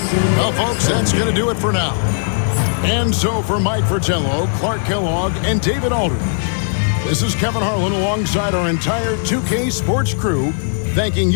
Well, folks, that's going to do it for now. And so for Mike Fratello, Clark Kellogg, and David Aldridge, this is Kevin Harlan alongside our entire 2K Sports crew, thanking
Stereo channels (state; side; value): silent; right; 64 dB below the other